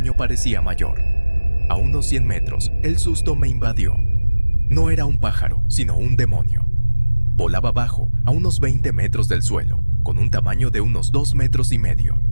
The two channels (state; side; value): inverted; both; correlation -1.00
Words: parecía mayor. A unos 100 metros, el susto me invadió. No era un pájaro, sino un demonio. Volaba bajo, a unos 20 metros del suelo, con un tamaño de unos 2,5 metros.